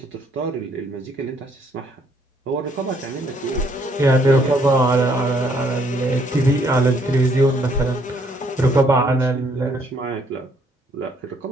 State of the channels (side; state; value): both; normal; correlation 0.67